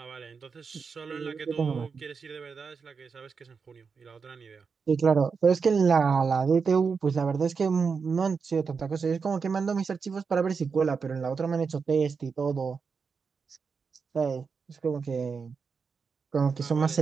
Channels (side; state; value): left; quieter; 5.4 dB